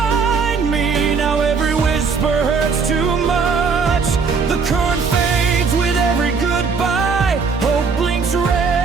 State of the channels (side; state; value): left; quieter; 5.1 dB